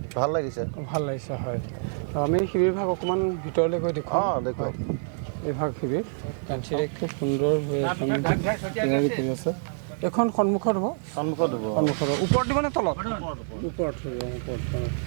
ভাল লাগিছে। ভাল লাগিছে হয়। আমি শিবিৰভাগ অকণমান ভিতৰলৈ গৈ দেখুৱাওঁ। দেখুৱাওক। এইভাগ শিবিৰ খুব সুন্দৰ হৈ তৈয়াৰী কৰি আছে। এখন সন্মুখত হ'ব, সন্মুখত হ'ব। ওপৰত দিব নে তলত? ওপৰত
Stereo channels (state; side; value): silent; left; digital silence